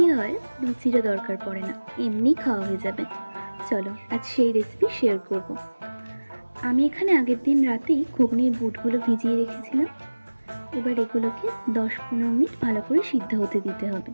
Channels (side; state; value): both; inverted; correlation -1.00